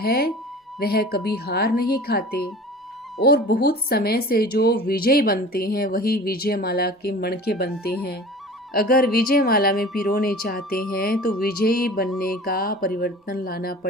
वह कभी हार नहीं खाते और बहुत समय से जो विजय बनते हैं वही विजय माला के मणके बनते हैं। अगर विजय माला में पिरोने चाहते हैं तो विजयी बनने का परिवर्तन लाना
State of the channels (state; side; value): normal; both; correlation 0.40